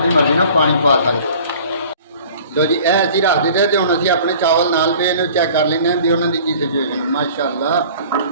ਮਰਜ਼ੀ ਨਾਲ ਪਾਣੀ ਪਾ ਸਕਦੇ ਹੋ। ਲੋ ਜੀ, ਇਹ ਅਸੀਂ ਰੱਖ ਦਿੱਤੇ ਤੇ ਹੁਣ ਅਸੀਂ ਆਪਣੇ ਚਾਵਲ ਨਾਲ ਪਏ ਨੇ ਚੈੱਕ ਕਰ ਲੈਂਦੇ ਹਾਂ ਵੀ ਉਹਨਾਂ ਦੀ ਕੀ ਸਿਚੁਏਸ਼ਨ। माशाल्लाह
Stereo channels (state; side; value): inverted; both; correlation -0.47